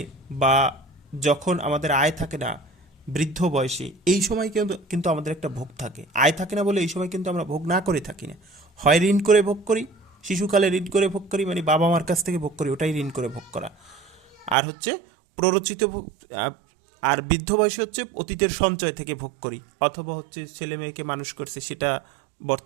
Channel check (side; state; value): left; drops out; at 14.6 s